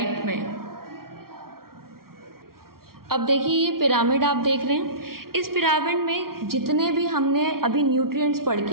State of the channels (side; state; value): left; late; 0.93 ms